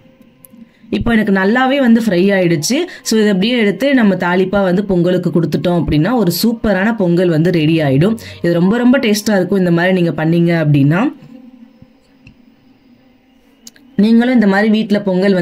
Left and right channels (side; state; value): both; identical; correlation 1.00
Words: இப்போ எனக்கு நல்லாவே வந்து ஃப்ரை ஆகிடுச்சு. ஸோ இதை அப்படியே எடுத்து நம்ம தாளிப்பாக வந்து பொங்கலுக்கு கொடுத்துட்டோம் அப்படின்னா ஒரு சூப்பரான பொங்கல் வந்து ரெடி ஆகிடும். இது ரொம்ப ரொம்ப டேஸ்ட்டாக இருக்கும் இந்த மாதிரி நீங்கள் பண்ணீங்க அப்படின்னா. நீங்களும் இந்த மாதிரி வீட்டில் பொங்கல்